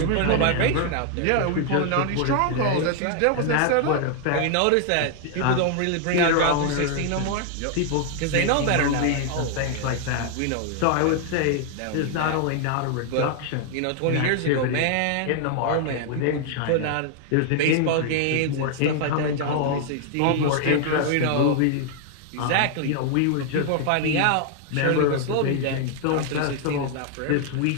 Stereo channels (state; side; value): different; both; correlation 0.00